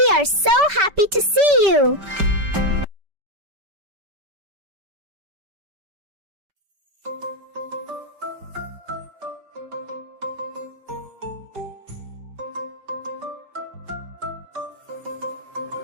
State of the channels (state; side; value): late; left; 5.2 ms